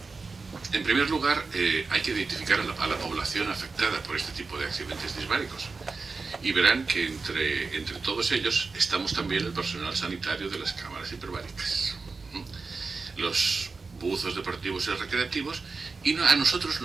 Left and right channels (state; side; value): quieter; left; 4.3 dB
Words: En primer lugar, hay que identificar a la población afectada por este tipo de accidentes disbáricos. Y verán que entre todos ellos estamos también el personal sanitario de las cámaras hiperbáricas, los buzos deportivos y recreativos, y a nosotros